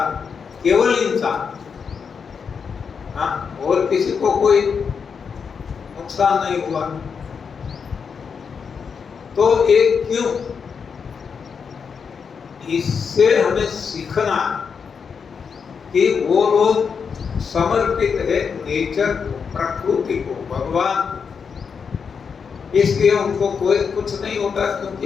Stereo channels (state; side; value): quieter; right; 6.1 dB